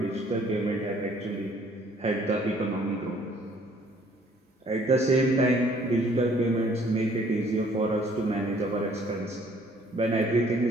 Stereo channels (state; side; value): normal; both; correlation 0.60